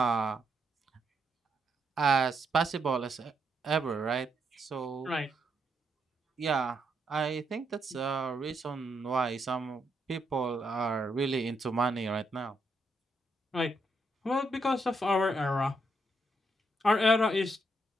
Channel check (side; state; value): both; normal; correlation 0.78